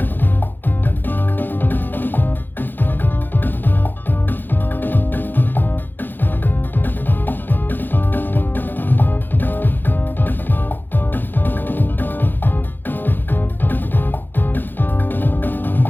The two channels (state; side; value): late; right; 0.092 ms